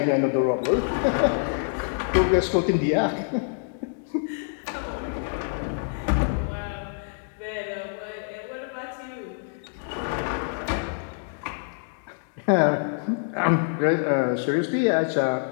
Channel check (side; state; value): right; silent; digital silence